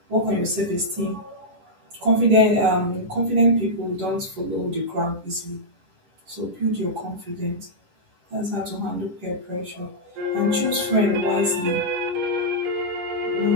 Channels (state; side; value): late; left; 11 ms